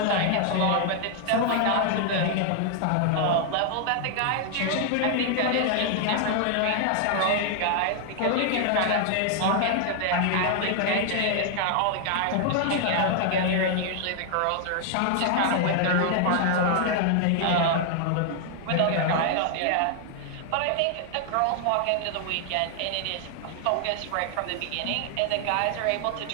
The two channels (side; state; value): both; different; correlation 0.00